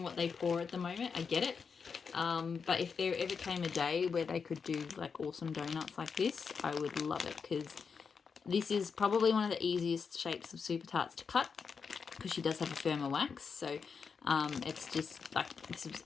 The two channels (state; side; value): quieter; right; 5.7 dB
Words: what they pour at the moment. I get it. But if there ever came a day where they could do like awesome donuts like this, I would love it, because this is probably one of the easiest shapes of Super Tarts to cut, because she does have a firmer wax. So it's just like, it's